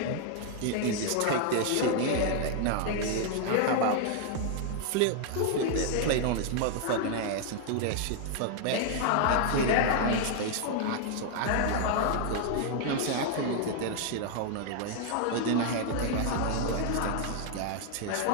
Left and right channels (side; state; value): both; different; correlation 0.00